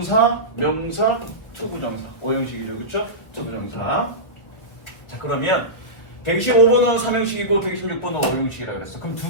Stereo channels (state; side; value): late; right; 1.5 ms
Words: 명사, 투부정사. 5형식이죠. 그렇죠? 투부정사. 자, 그러면 125번은 3형식이고 126번은 5형식이라 그랬어. 그럼 두